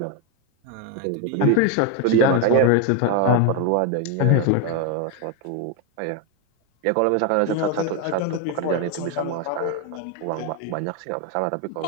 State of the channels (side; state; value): both; different; correlation 0.01